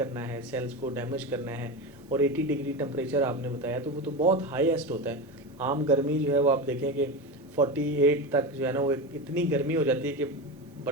है, सेल्स को डैमेज करना है, और 80 डिग्री टेम्परेचर आपने बताया, तो वो तो बहुत हाईएस्ट होता है। आम गर्मी जो है वो आप देखें कि 48 तक जो है ना वो इतनी गर्मी हो जाती है कि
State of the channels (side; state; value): both; normal; correlation 0.21